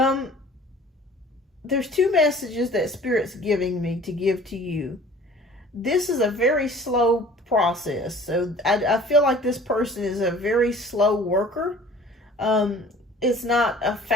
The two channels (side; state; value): both; normal; correlation 0.48